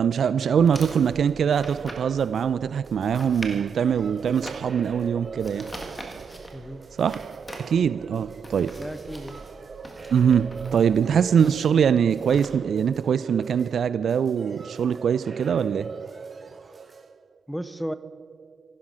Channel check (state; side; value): quieter; left; 7.1 dB